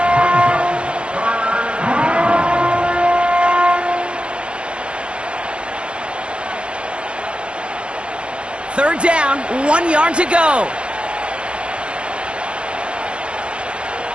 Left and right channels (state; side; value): late; left; 0.052 ms